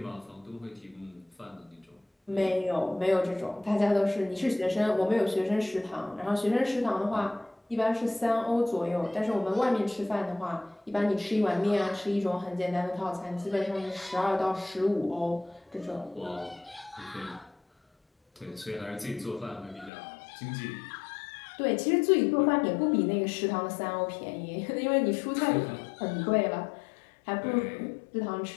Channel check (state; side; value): drops out; right; at 19.9 s